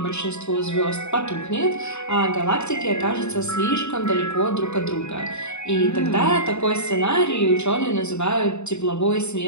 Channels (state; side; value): late; right; 0.82 ms